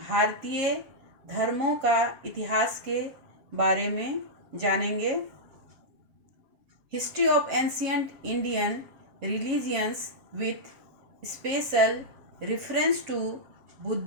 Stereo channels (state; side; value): late; left; 7.2 ms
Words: धर्मों का इतिहास के बारे में जानेंगे। History of ancient Indian religions with special reference to